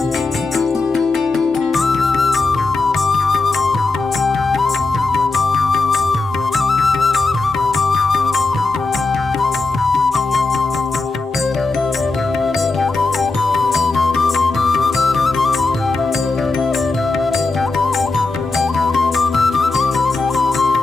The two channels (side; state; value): right; quieter; 3.6 dB